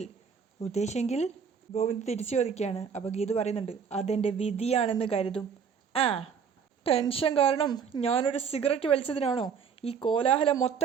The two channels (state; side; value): quieter; left; 6.7 dB